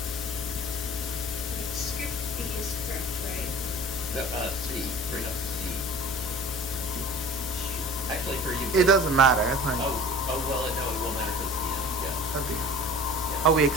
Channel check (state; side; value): normal; both; correlation 0.43